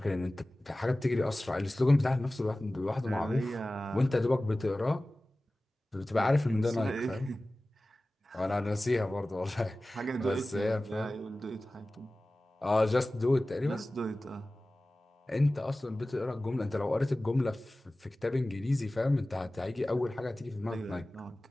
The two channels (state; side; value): normal; both; correlation 0.97